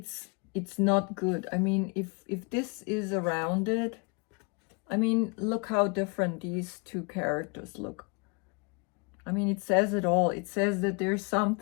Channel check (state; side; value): quieter; right; 32.8 dB